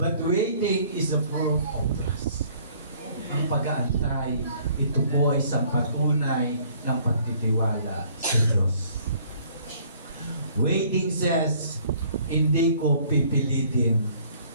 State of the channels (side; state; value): both; inverted; correlation -0.58